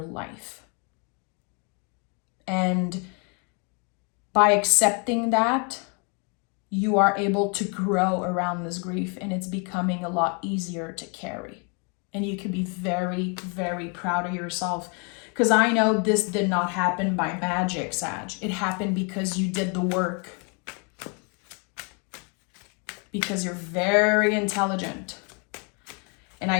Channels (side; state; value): right; quieter; 35.6 dB